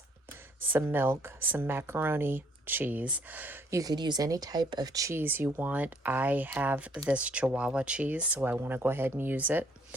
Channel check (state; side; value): normal; both; correlation 0.65